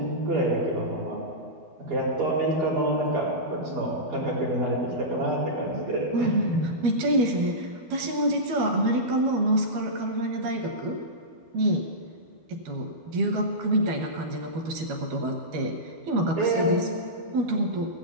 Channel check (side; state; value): left; late; 12 ms